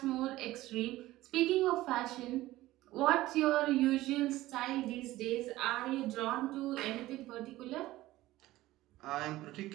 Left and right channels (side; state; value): left; quieter; 16.8 dB